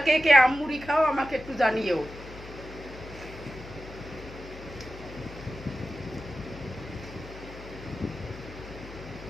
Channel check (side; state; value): left; noise; hum, 15 dB below the sound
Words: কে কে আম মুড়ি খাও আমাকে একটু জানিও।